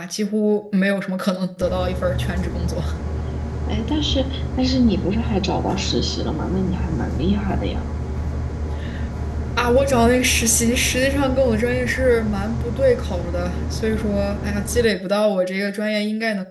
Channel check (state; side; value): identical; both; correlation 1.00